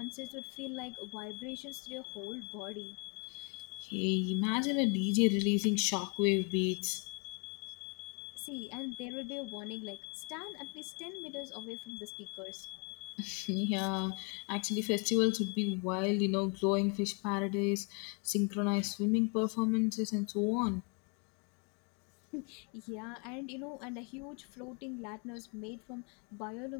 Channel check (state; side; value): quieter; right; 35.9 dB